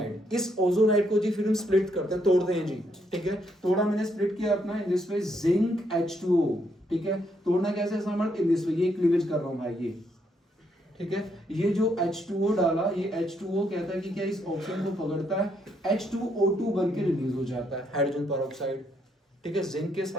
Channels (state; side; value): normal; both; correlation 0.74